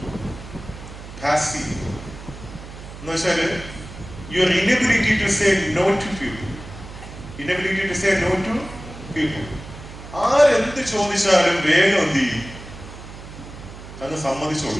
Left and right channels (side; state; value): right; noise; hum, 14 dB below the sound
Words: പാസീവ് എന്ന് വെച്ചാല് your inability to say no to people, inability to say no to people. ആരെന്ത് ചോദിച്ചാലും വേഗം എന്ത് ചെയ്യും, അങ്ങ്